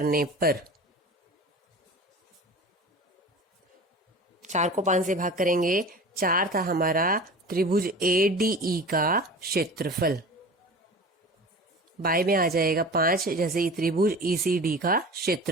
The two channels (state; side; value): normal; both; correlation 0.36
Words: पर, 4 को 5 से भाग करेंगे, 4 था हमारा त्रिभुज ADE का क्षेत्रफल, बाय में आ जाएगा 5, जैसे ही त्रिभुज ECD का